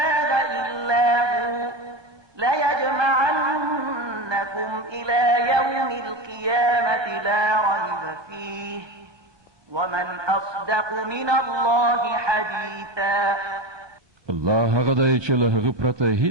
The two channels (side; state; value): left; late; 1.2 ms